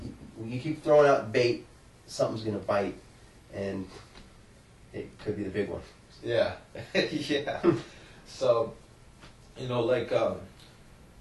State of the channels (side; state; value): both; identical; correlation 1.00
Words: keep throwing out bait, something's gonna bite, and it could be the big one. Yeah, yeah. So, I